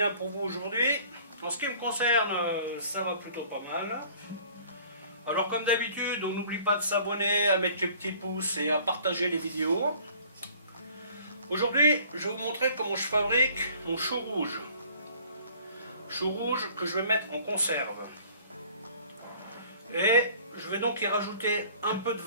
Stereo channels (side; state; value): both; inverted; correlation -0.53